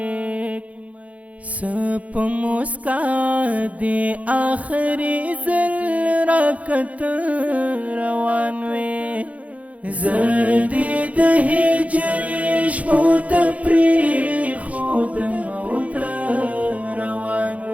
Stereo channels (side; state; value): left; late; 0.067 ms